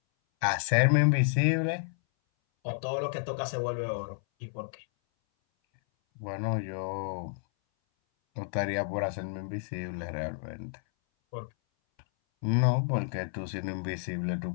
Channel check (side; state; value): right; silent; 57 dB below the other